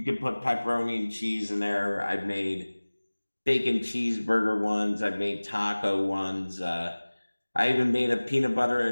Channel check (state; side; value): inverted; both; correlation -1.00